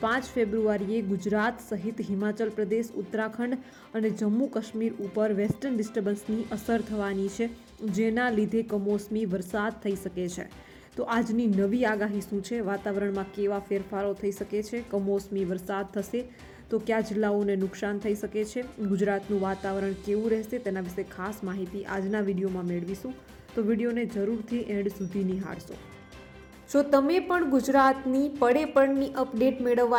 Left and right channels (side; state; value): both; identical; correlation 1.00